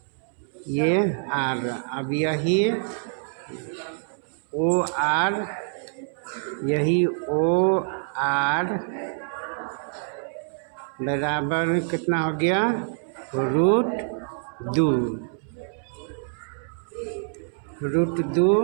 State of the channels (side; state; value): left; silent; 61 dB below the other